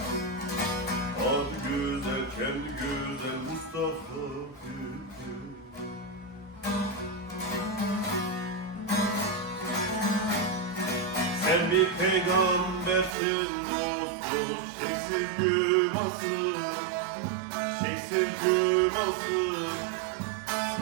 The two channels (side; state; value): left; drops out; at 13.2 s